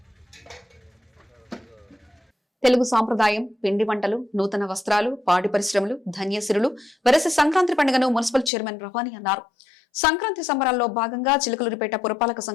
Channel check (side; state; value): right; drops out; at 8.5 s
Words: తెలుగు సాంప్రదాయం, పిండి వంటలు, నూతన వస్త్రాలు, పాడి పరిశ్రమలు, ధన్యసిరులు వెరసి సంక్రాంతి పండుగను మున్సిపల్ చైర్మన్ రవాణి అన్నారు. సంక్రాంతి సంబరాల్లో భాగంగా చిలుకలూరిపేట పురపాలక